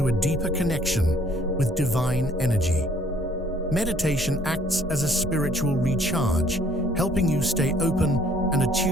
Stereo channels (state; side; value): normal; both; correlation 0.59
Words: a deeper connection with divine energy. Meditation acts as a spiritual recharge, helping you stay open and